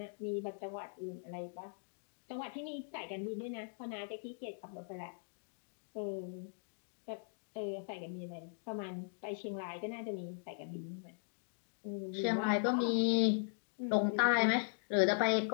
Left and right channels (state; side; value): silent; right; digital silence